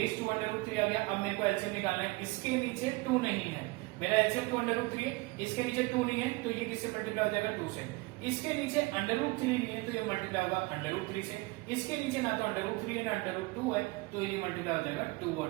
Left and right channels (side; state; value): left; quieter; 24.0 dB